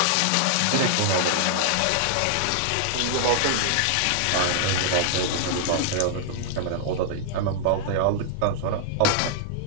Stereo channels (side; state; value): both; different; correlation -0.01